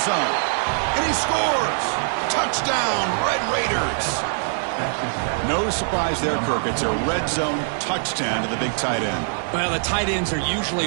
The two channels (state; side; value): silent; left; 55 dB below the other